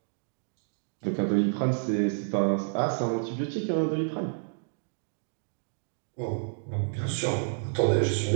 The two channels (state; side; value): silent; left; digital silence